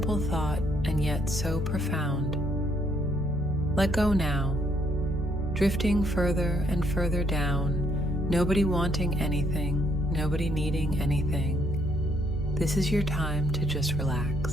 thought and yet so profound. Let go now, drifting further and further down, nobody wanting anything, nobody needing anything. This is your time to just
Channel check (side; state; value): both; normal; correlation 0.70